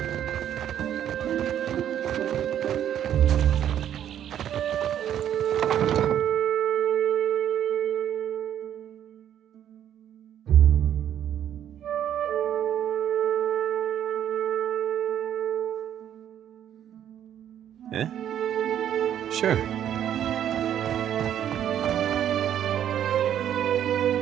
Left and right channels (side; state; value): left; quieter; 10.2 dB